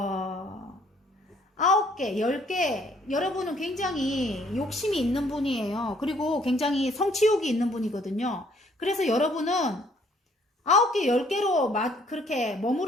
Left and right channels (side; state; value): both; normal; correlation 0.63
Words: 9개, 10개, 여러분은 굉장히 욕심이 있는 분이에요. 그리고 굉장히 성취욕이 있는 분이거든요. 그래서 여러분은 9개, 10개로 그렇게